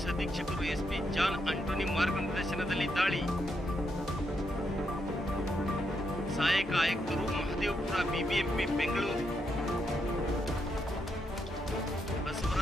ಅಧೀಕ್ಷಕರು ಎಸ್ಪಿ ಜಾನ್ ಆಂಟೋನಿ ಮಾರ್ಗದರ್ಶನದಲ್ಲಿ ದಾಳಿ. ಸಹಾಯಕ ಆಯುಕ್ತರು ಮಹದೇವಪುರ ಬಿಬಿಎಂಪಿ ಬೆಂಗಳೂರು.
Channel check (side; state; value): both; normal; correlation 0.80